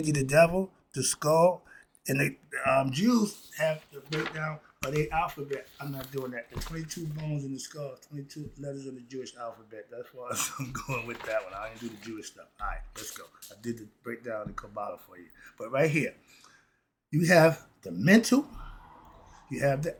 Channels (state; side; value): identical; both; correlation 1.00